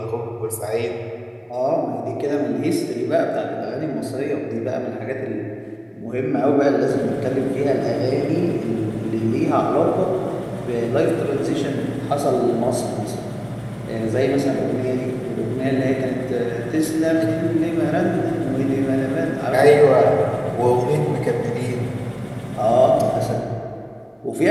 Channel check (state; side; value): identical; both; correlation 1.00